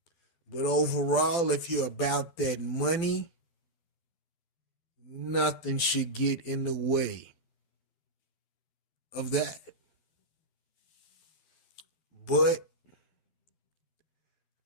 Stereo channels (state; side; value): late; right; 12 ms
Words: But overall, if you're about that money, nothing should get in the way of that. But